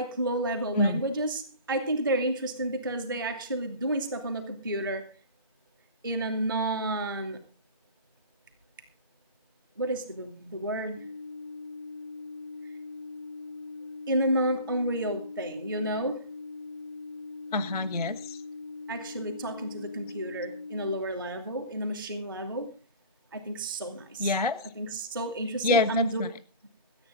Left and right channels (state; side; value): inverted; both; correlation -0.39